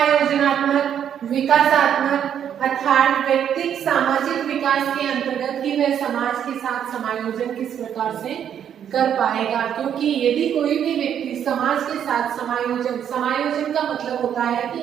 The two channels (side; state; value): left; quieter; 9.1 dB